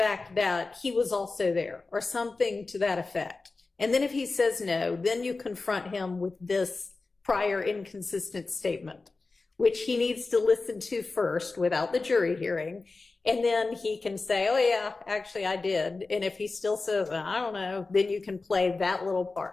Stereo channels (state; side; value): quieter; right; 3.7 dB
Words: that he was also there or something to that effect? And then if he says no, then you confront him with this prior inconsistent statement, which he needs to listen to first without the jury hearing. And then he can say, oh yeah, actually I did. And if he still says, I don't know, then you can play that little